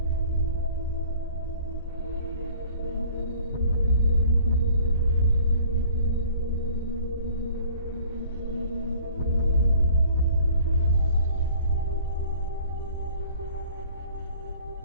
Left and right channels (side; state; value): both; inverted; correlation -0.51